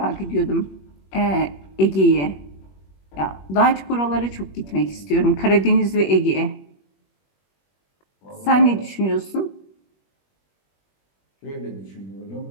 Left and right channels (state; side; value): late; right; 21 ms